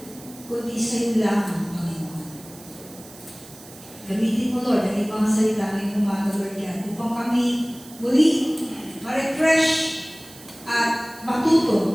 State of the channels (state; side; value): noise; right; hiss, 20 dB below the sound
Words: kundi sa iyo lamang, Panginoon. Gamitin mo, Lord, ang ibang salita ngayong umaga, Lord God, upang kami muli ma-refresh at